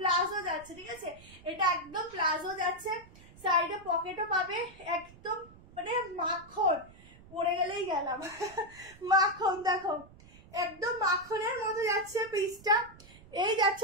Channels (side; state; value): right; noise; rumble, 22 dB below the sound